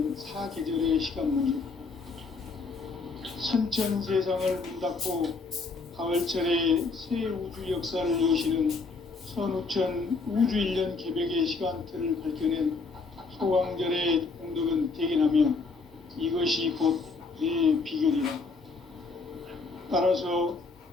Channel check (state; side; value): quieter; right; 4.2 dB